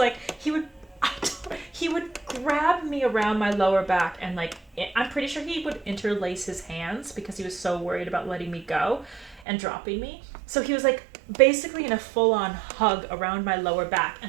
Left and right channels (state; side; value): drops out; left; at 9.4 s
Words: would grab me around my lower back, and like I'm pretty sure he would interlace his hands because he was so worried about letting me go and dropping me. So he was like basically in a full-on hug around my lower back,